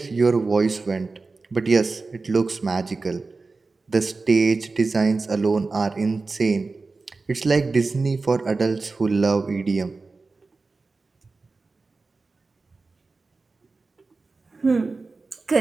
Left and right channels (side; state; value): left; quieter; 3.9 dB